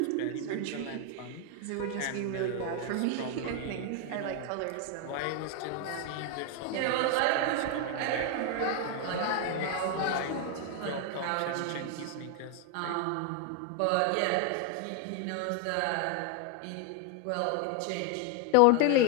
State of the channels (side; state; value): both; different; correlation 0.01